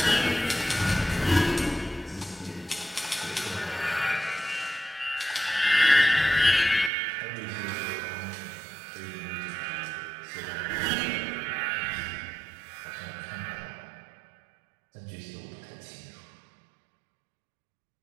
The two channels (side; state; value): left; drops out; at 6.9 s